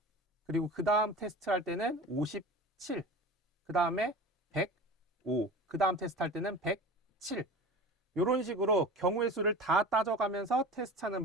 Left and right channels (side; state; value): both; normal; correlation 0.35